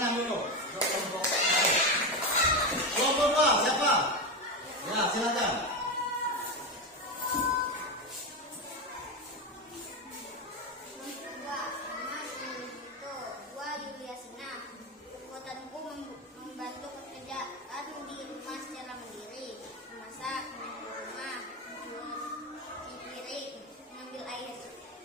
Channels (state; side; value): normal; both; correlation 0.15